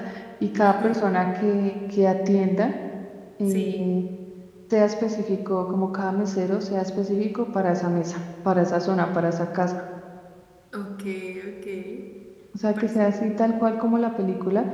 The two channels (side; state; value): both; identical; correlation 1.00